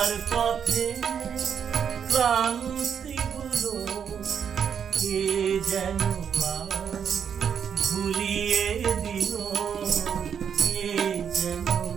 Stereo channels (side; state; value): left; quieter; 7.7 dB